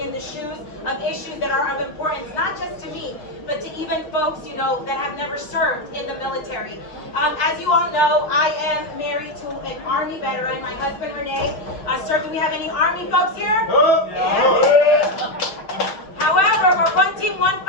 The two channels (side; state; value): right; late; 6.6 ms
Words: in the shoes of issues that are of importance, not just to me, but to even folks, you know, that have never served in the military. As you all know, I am married to an Army veteran. My husband, Renee, served. Do we have any Army folks here? Yeah. However, we're one team, one